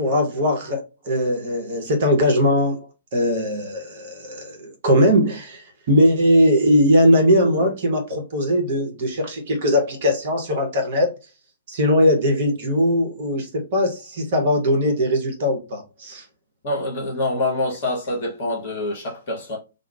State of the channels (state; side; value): inverted; both; correlation -0.59